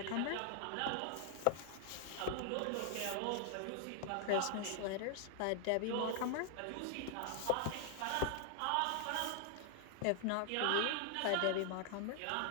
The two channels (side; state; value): both; different; correlation 0.00